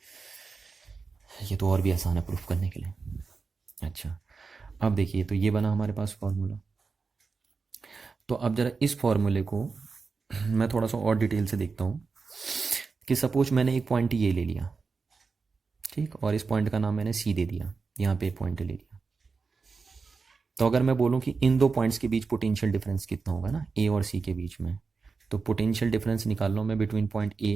ये तो और भी आसान है प्रूफ करने के लिए। अच्छा, अब देखिए, तो ये बना हमारे पास फॉर्मूला। तो अब जरा इस फॉर्मूले को मैं थोड़ा सा और डिटेल से देखता हूँ कि सपोज मैंने एक पॉइंट ये ले लिया, ठीक, और इस पॉइंट का नाम मैंने सी दे दिया, यहाँ पे एक पॉइंट ले लिया। तो अगर मैं बोलूँ कि इन दो पॉइंट्स के बीच पोटेंशियल डिफरेंस कितना होगा ना, ए और सी के बीच में, तो पोटेंशियल डिफरेंस निकाल लो मैं बिटवीन पॉइंट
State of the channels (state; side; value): quieter; left; 4.6 dB